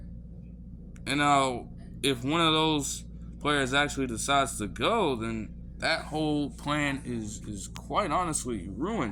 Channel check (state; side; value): identical; both; correlation 1.00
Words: And now, if one of those players actually decides to go, then that whole plan is quite honestly